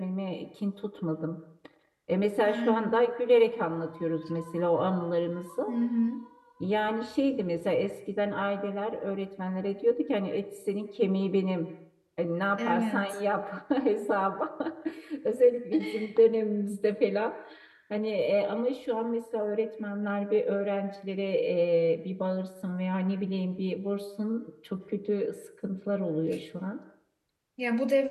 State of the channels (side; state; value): both; identical; correlation 1.00